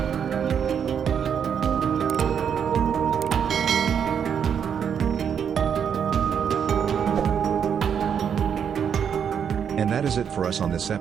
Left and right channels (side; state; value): left; quieter; 7.8 dB